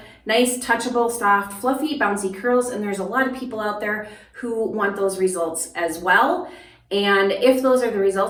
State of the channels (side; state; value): both; identical; correlation 1.00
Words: nice, touchable, soft, fluffy, bouncy curls, and there's a lot of people out there who want those results as well. And if those are the